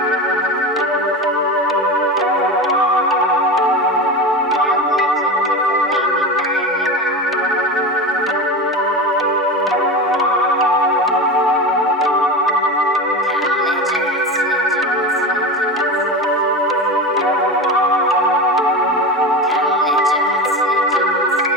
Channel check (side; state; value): both; normal; correlation 0.24